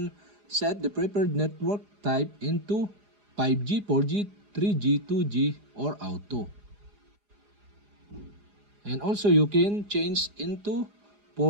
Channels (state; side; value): late; left; 4.9 ms